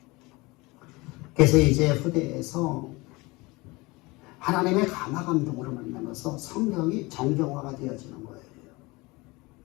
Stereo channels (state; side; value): quieter; right; 23.6 dB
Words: 그래서 이제 후대에서 하나님의 감화감동으로 만나면서 성경이 정경화가 되어지는 거예요.